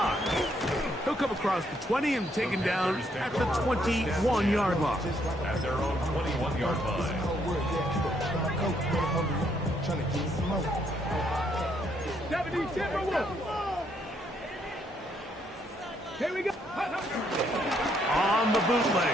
He'll come across the 20 and taken down at the 21-yard line. At their own 21-yard line. 77. Here we go. On the bootleg,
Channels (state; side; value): normal; both; correlation 0.72